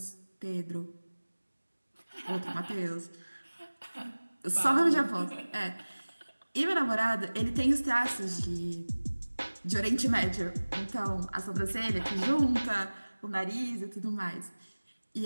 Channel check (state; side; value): inverted; both; correlation -1.00